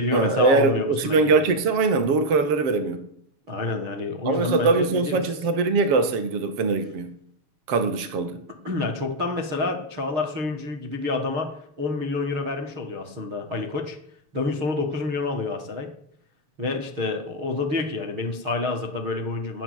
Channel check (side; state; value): left; late; 7.3 ms